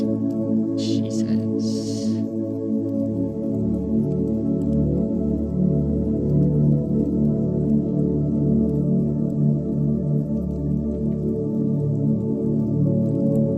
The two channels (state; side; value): identical; both; correlation 1.00